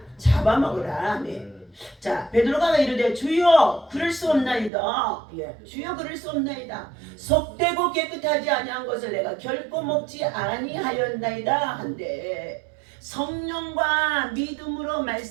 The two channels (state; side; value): drops out; left; at 4.7 s